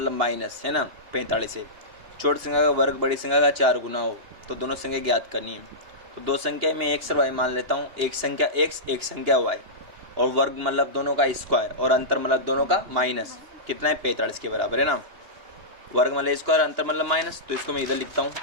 माइनस, है ना 45 से। छोटी संख्या का वर्ग बड़ी संख्या का 4 गुना हो, तो दोनों संख्या ज्ञात करनी है। तो दो संख्या में एक्स और वाई मान लेता हूँ, एक संख्या एक्स एक संख्या वाई, और वर्ग मतलब दोनों का स्क्वायर, और अंतर मतलब दोनों का माइनस, कितना है 45 के बराबर है ना। वर्ग मतलब स्क्वायर, अंतर मतलब माइनस, तो इसको मैं इधर लिखता हूँ,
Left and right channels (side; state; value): left; late; 2.9 ms